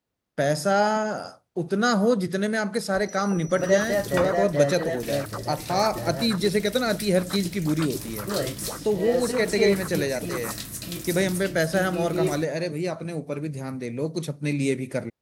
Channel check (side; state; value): both; identical; correlation 1.00